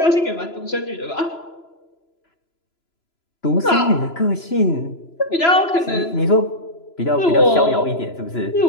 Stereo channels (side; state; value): right; late; 3.0 ms